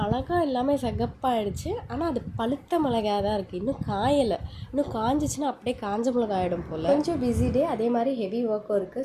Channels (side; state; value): both; identical; correlation 1.00